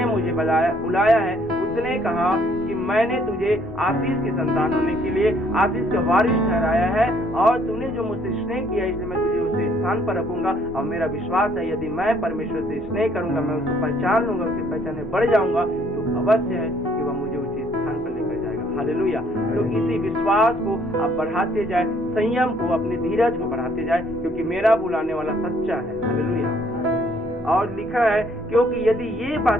मुझे बुलाया है उसने कहा कि मैंने तुझे आशीष के संतान होने के लिए आशीष का वारिस ठहराया है और तूने जो मुझसे स्नेह किया इसलिए मैं तुझे उस स्थान पर रखूंगा। और मेरा विश्वास है यदि मैं परमेश्वर से स्नेह करूंगा, मैं उसको पहचान लूंगा, उसकी पहचान में बढ़ जाऊंगा, तो अवश्य है कि वह मुझे उसी स्थान पर लेकर जाएगा। हालेलुया। तो इसी विश्वास को आप बढ़ाते जाए, संयम को, अपने धीरज को बढ़ाते जाए, क्योंकि मेरा बुलाने वाला सच्चा है। हालेलुया। और लिखा है क्योंकि यदि ये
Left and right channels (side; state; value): both; normal; correlation 0.64